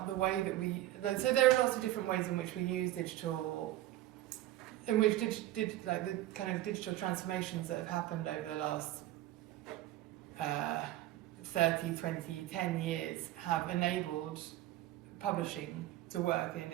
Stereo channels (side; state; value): left; quieter; 14.8 dB